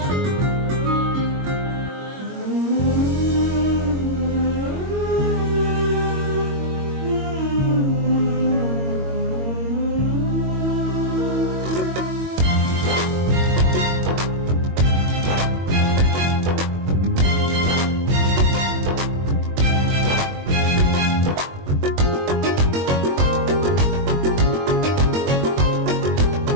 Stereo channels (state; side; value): late; left; 22 ms